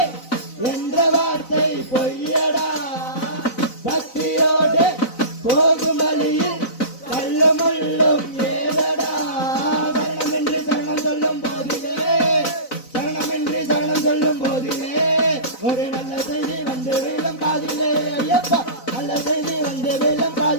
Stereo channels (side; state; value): right; late; 4.0 ms